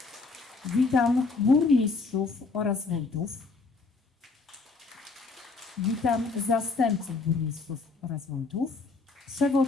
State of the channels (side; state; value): right; quieter; 4.1 dB